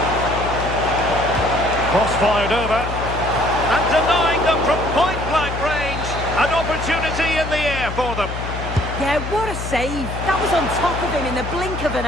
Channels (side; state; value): left; noise; hum, 6 dB below the sound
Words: Cross fired over, and denying them from point-blank range. An opportunity in the air for them. Yeah, what a save. That was on top of him in the blink of an